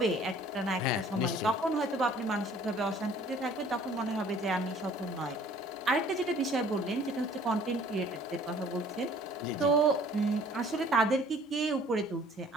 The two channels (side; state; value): both; normal; correlation 0.53